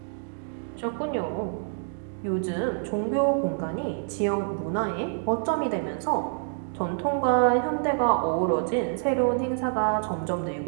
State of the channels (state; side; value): silent; left; digital silence